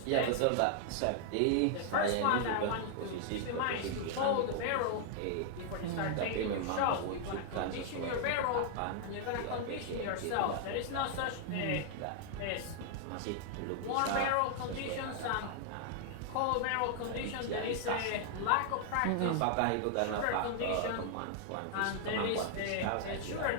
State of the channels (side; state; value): both; different; correlation 0.00